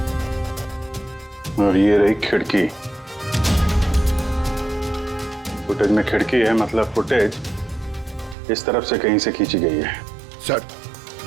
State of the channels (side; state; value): left; drops out; at 8.3 s